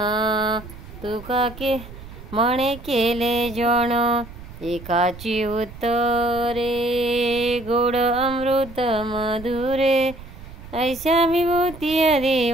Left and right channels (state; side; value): noise; right; rumble, 15 dB below the sound